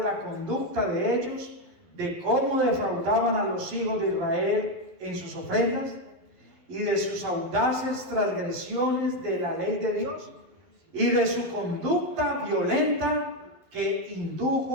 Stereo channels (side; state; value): left; late; 12 ms